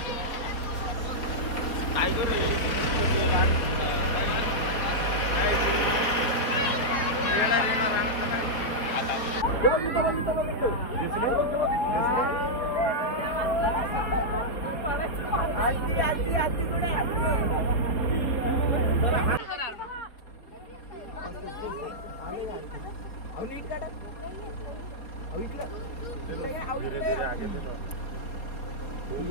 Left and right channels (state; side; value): late; right; 4.4 ms